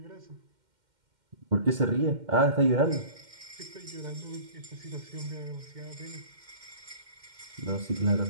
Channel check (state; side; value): late; left; 2.1 ms